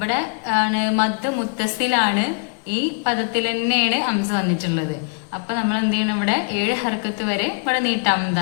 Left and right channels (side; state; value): right; quieter; 35.3 dB